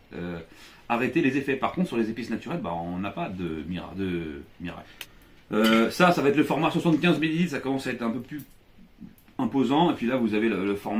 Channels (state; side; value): identical; both; correlation 1.00